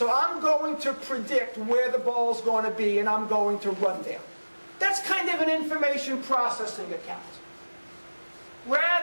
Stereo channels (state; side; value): inverted; both; correlation -1.00